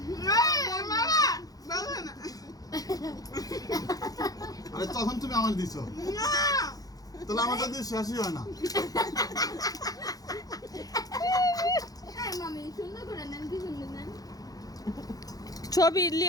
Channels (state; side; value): late; right; 0.18 ms